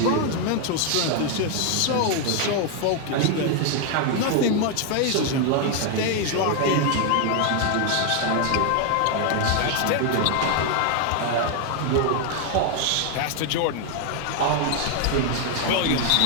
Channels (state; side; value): different; both; correlation 0.00